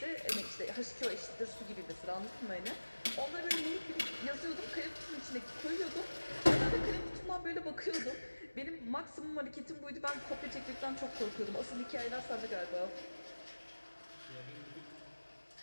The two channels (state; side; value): inverted; both; correlation -1.00